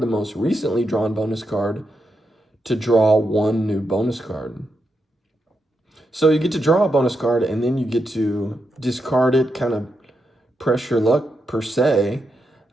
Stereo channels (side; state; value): both; normal; correlation 0.85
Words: the most recently drawn bonus card to draw 1 new bonus card. So you get to draw a bonus card, and then you get to discard it, kind of press your luck per se,